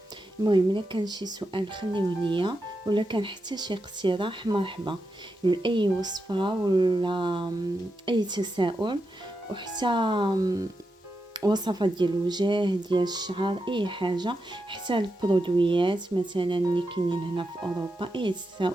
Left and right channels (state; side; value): normal; both; correlation 0.87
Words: المهم الا كان شي سؤال خليوه ليا، ولا كان حتى شي اقتراح مرحبا لاي وصفه ولا اي تساؤل، وحتى وصفات ديال الوجه ديال الشعر، اي حاجه، حتى البرودويات مثلا اللي كاينين هنا في اوروبا، اي